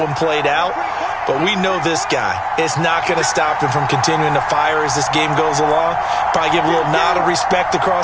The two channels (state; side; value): identical; both; correlation 1.00